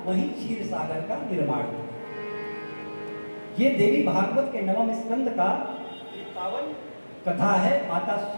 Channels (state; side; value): inverted; both; correlation -1.00